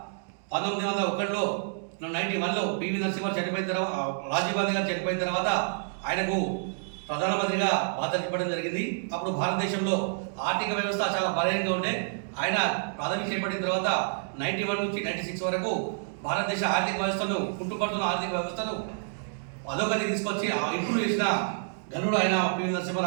91లో పివి నరసింహ చనిపోయిన తర్వాత, రాజీవ్ గాంధీ గారు చనిపోయిన తర్వాత ఆయనకు ప్రధానమంత్రిగా బాధ్యత ఇవ్వడం జరిగింది. అప్పుడు భారతదేశంలో ఆర్థిక వ్యవస్థ చాలా బలహీనంగా ఉండే. ఆయన పదవి చేపట్టిన తర్వాత 91 నుంచి 96 వరకు భారతదేశ ఆర్థిక వ్యవస్థను, కుంటుపడుతున్న ఆర్థిక వ్యవస్థను అధోగతి తీసుకొచ్చి ఇంప్రూవ్ చేసిన ఘనుడు ఆయన పివి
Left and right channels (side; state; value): left; silent; digital silence